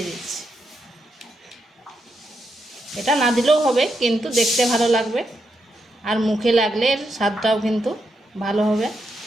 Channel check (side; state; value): both; normal; correlation 0.82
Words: দিচ্ছি। এটা না দিলেও হবে, কিন্তু দেখতে ভালো লাগবে আর মুখে লাগলে এর স্বাদটাও কিন্তু ভালো হবে।